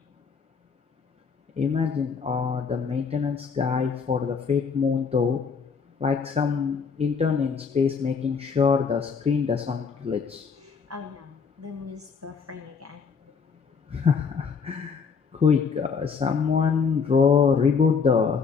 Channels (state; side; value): quieter; right; 5.7 dB